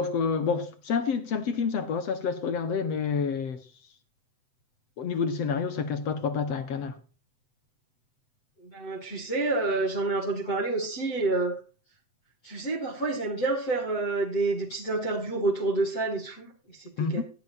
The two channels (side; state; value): right; late; 7.9 ms